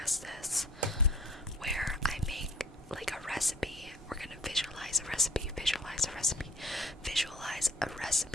this, where I make like a recipe. We're gonna visualize a recipe, visualize a recipe, visualize a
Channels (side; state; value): both; normal; correlation 0.54